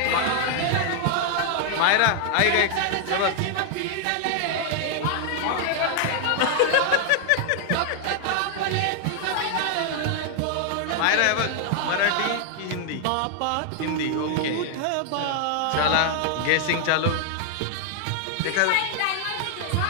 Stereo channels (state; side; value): different; both; correlation 0.00